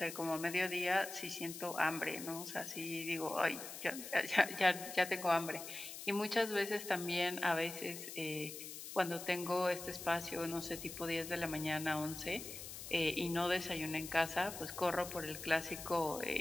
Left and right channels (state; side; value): noise; left; hiss, 10 dB below the sound